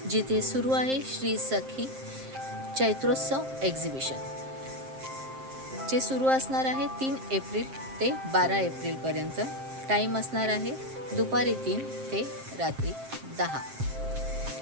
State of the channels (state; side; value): late; left; 7.6 ms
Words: जिथे सुरू आहे श्री सखी चैत्रोत्सव एक्झिबिशन, जे सुरू असणार आहे 3 एप्रिल ते 12 एप्रिलपर्यंत. टाईम असणार आहे दुपारी 3 ते रात्री 10.